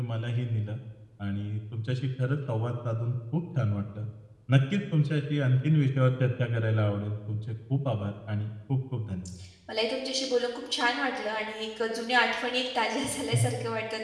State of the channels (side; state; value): both; identical; correlation 1.00